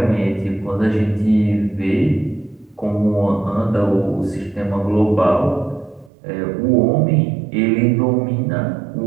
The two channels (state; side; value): drops out; left; at 6.1 s